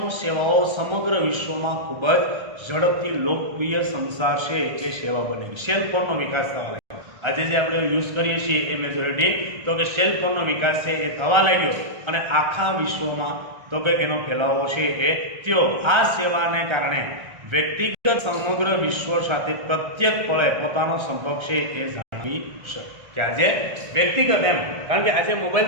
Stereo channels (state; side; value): late; left; 1.3 ms